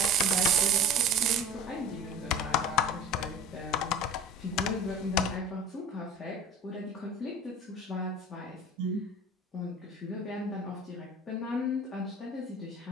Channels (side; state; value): both; normal; correlation 0.40